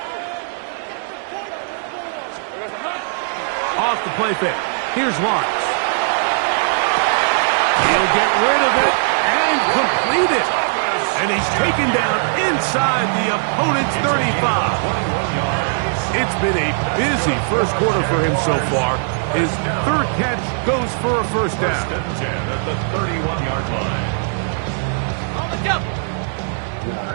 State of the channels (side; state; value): left; silent; digital silence